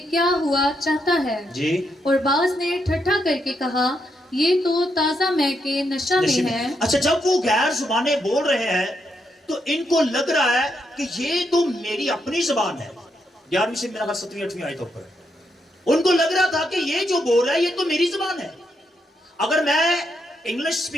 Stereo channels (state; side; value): normal; both; correlation 0.80